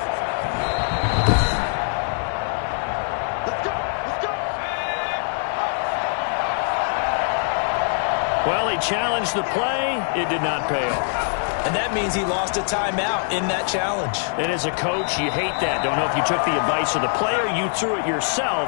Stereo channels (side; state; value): right; silent; digital silence